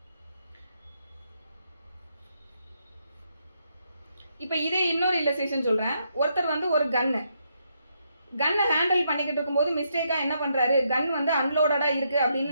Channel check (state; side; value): inverted; both; correlation -0.77